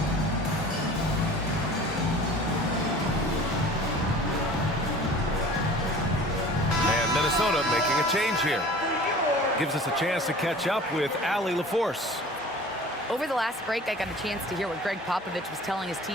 And Minnesota making a change here. Gives us a chance to catch up with Allie LaForce. Over the last break, I got a chance to hear what Greg Popovich was telling his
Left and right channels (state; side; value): normal; both; correlation 0.43